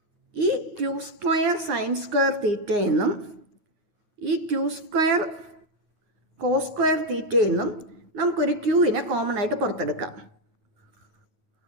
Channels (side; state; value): left; late; 9.6 ms